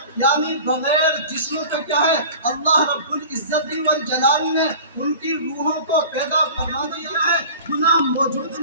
یعنی بغیر جسم کا کیا ہے اللہ رب العزت والجلال نے ان کی روحوں کو پیدا فرما دیا ہے، گناہ موجود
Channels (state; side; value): inverted; both; correlation -0.40